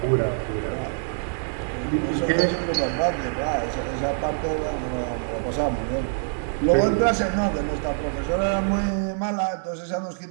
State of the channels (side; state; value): left; silent; 62 dB below the other